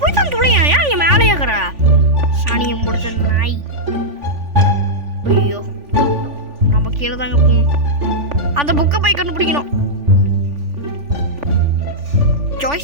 போய் தான் துளையா. ஏன் நீ மேலே ஏற்கிற சாணியை முடிச்ச நாய். ஐயோ, நம்ம கீழே தாங்க போவோம். அந்த புக்கை போய் கண்டுபிடிக்கணும்.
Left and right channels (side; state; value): left; late; 3.5 ms